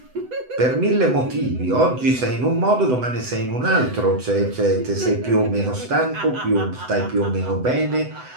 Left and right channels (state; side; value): late; left; 7.9 ms